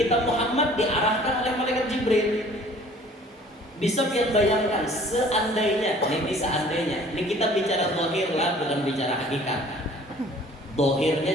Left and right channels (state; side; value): normal; both; correlation 0.52